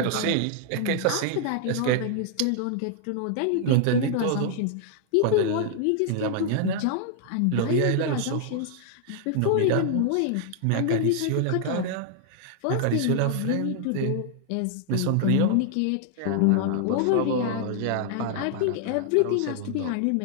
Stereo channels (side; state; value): both; different; correlation 0.00